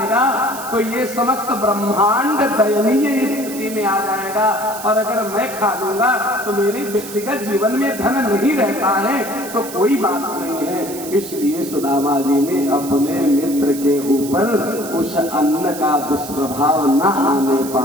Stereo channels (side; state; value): right; noise; hiss, 12 dB below the sound